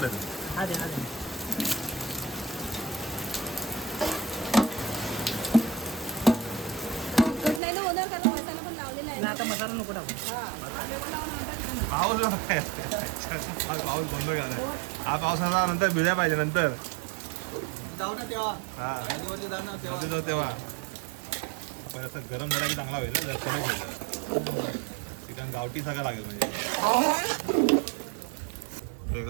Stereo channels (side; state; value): left; drops out; at 7.6 s